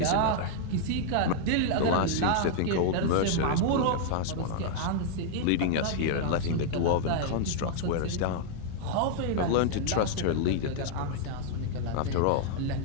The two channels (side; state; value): both; different; correlation -0.01